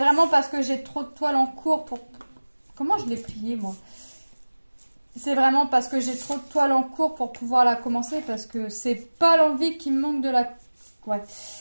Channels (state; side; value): inverted; both; correlation -1.00